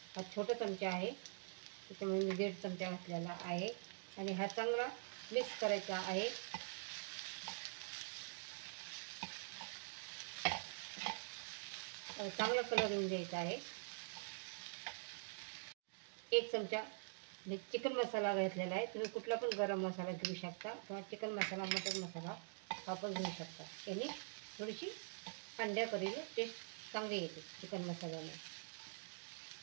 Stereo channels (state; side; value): silent; left; digital silence